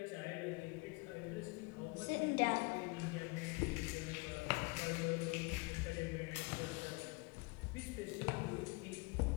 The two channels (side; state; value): right; quieter; 27.2 dB